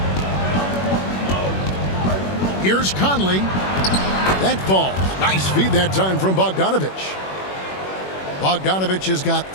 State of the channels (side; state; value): right; late; 21 ms